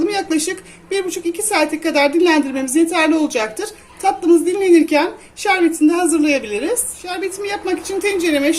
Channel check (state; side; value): identical; both; correlation 1.00